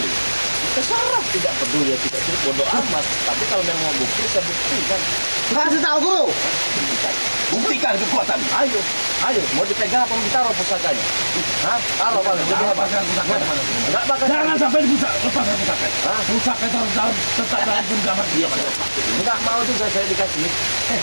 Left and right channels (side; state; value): both; inverted; correlation -1.00